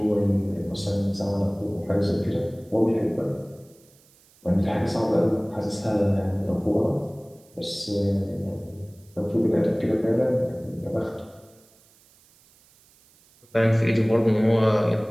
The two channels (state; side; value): noise; right; hiss, 30 dB below the sound